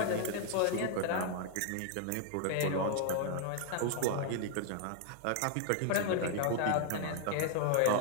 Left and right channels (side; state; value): both; different; correlation 0.00